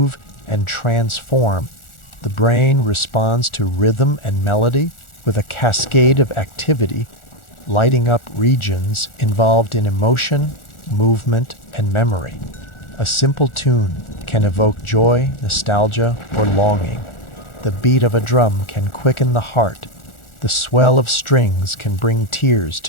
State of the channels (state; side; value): late; right; 1.4 ms